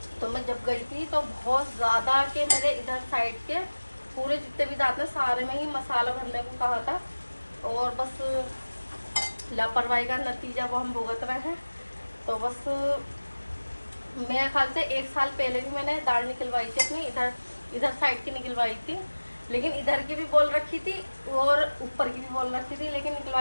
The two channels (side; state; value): both; inverted; correlation -1.00